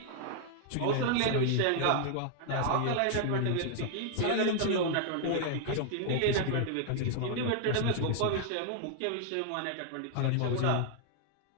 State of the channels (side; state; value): both; different; correlation 0.00